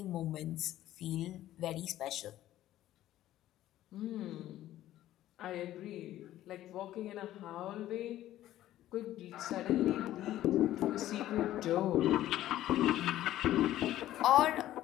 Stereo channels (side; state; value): right; quieter; 13.7 dB